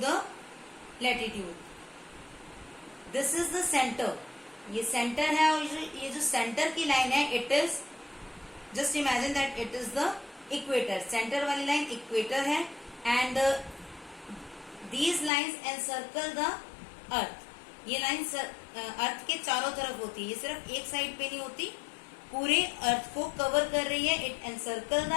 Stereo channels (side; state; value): right; drops out; at 15.3 s